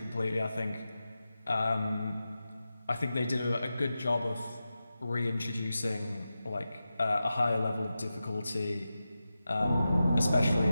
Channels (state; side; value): inverted; both; correlation -0.92